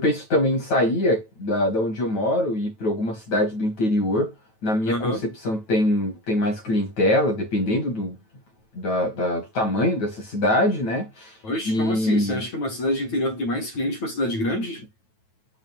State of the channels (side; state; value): right; late; 9.2 ms